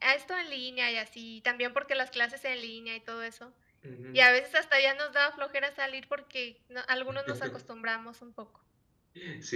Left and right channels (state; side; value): identical; both; correlation 1.00